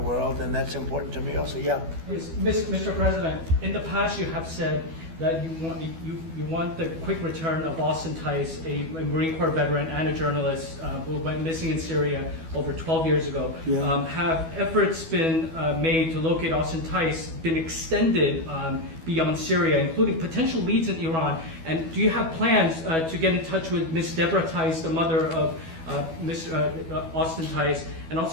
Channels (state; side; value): late; left; 12 ms